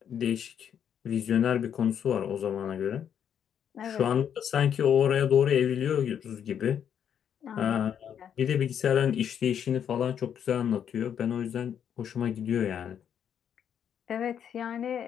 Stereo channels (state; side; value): quieter; right; 8.7 dB